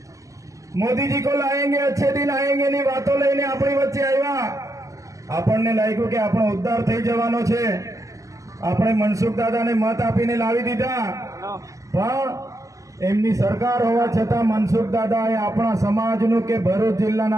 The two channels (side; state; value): left; late; 0.16 ms